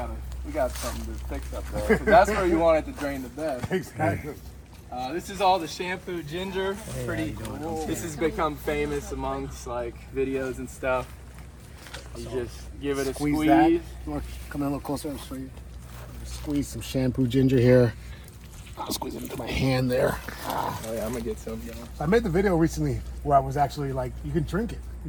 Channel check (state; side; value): identical; both; correlation 1.00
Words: something to fix up there. 'Cause that's where you want it to drain the best. Exactly. This is all the shampoo ginger. Pretty. This has become famous amongst like videos and stuff. You just give it a Squeeze squeeze. that. You want to come in a little closer? I'll show you. Squeeze some shampoo ginger here. I'll squeeze it into my hand there. Oh yeah, I'm gonna get some. I made the video recently where I was actually like, you can drink it.